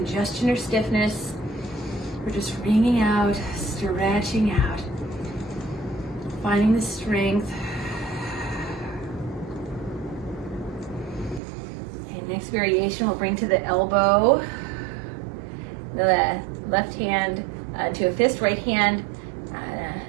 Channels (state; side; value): drops out; left; at 11.4 s